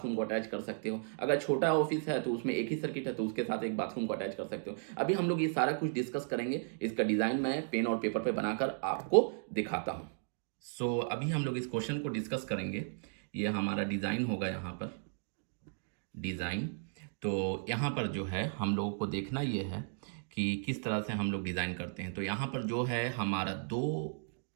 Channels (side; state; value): left; silent; digital silence